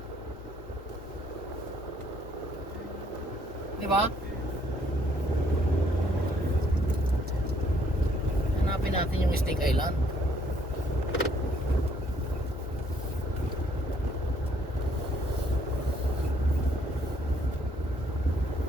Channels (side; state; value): both; normal; correlation 0.66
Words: Di ba? Hanapin natin yung Snake Island.